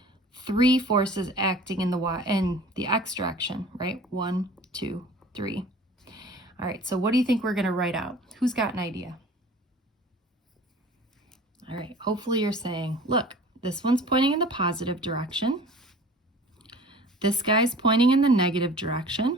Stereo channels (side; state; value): both; normal; correlation 0.45